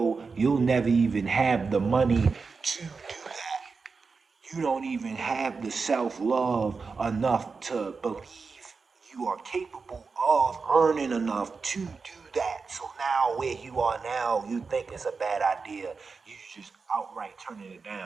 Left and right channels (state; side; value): quieter; left; 4.7 dB